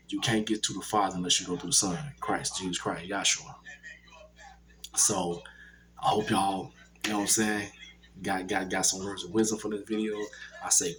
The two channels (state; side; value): identical; both; correlation 1.00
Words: you can't get to the Father unless you go through the Son, Christ, Jesus Christ, Yahshua. So I hope y'all, you know what I'm saying, got some words of wisdom for this video. I say